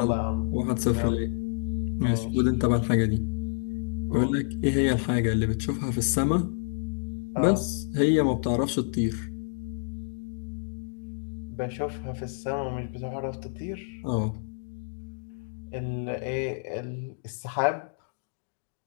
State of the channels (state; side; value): silent; right; digital silence